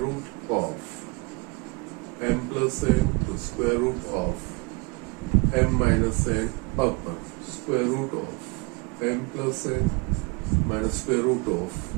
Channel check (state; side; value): quieter; left; 28.5 dB